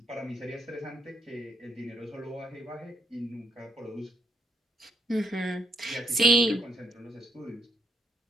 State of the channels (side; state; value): both; normal; correlation 0.76